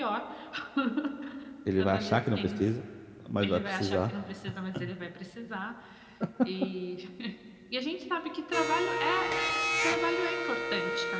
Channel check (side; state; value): both; identical; correlation 1.00